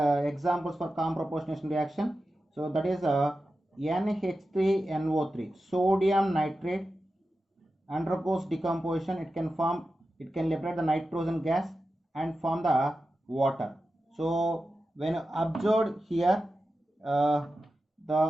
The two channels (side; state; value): both; normal; correlation 0.92